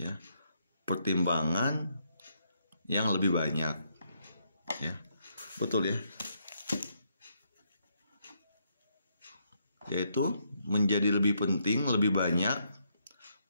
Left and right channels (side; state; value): both; inverted; correlation -0.75